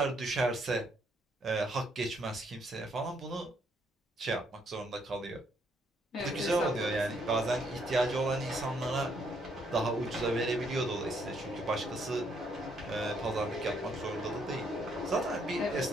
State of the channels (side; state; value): both; normal; correlation 0.71